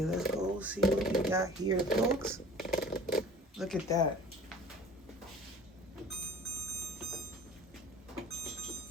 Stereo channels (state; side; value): normal; both; correlation 0.44